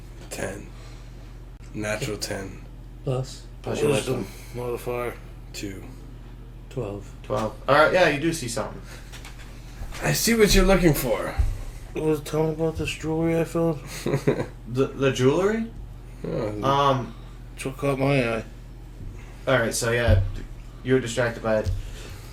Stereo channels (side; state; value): both; identical; correlation 1.00